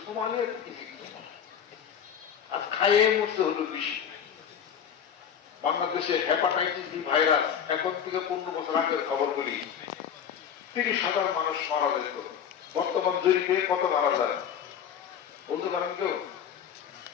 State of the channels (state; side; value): quieter; right; 8.3 dB